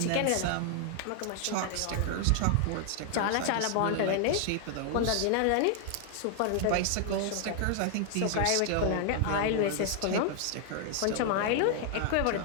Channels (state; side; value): different; both; correlation 0.00